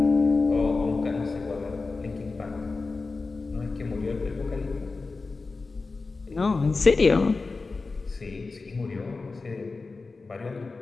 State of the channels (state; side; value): quieter; right; 3.9 dB